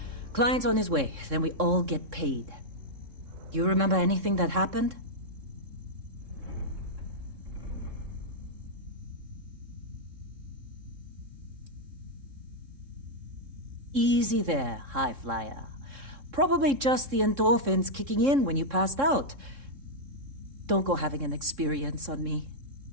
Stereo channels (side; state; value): left; late; 3.7 ms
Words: Client's on his way, then we all get paid. You remember anything that happened? Easy there, high flyer. Probably just the endorphins kicking in when you passed out. Don't go having an experience on me.